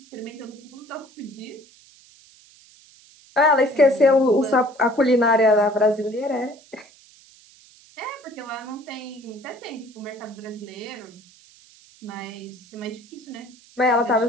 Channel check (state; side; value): noise; right; hiss, 26 dB below the sound